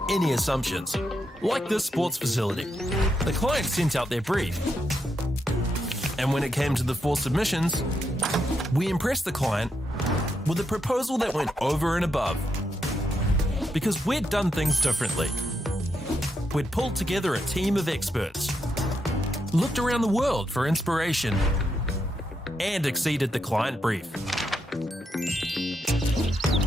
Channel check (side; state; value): both; normal; correlation 0.82